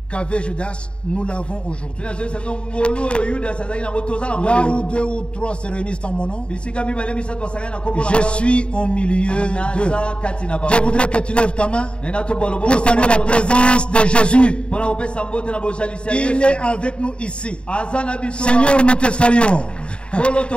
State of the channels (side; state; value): right; late; 0.055 ms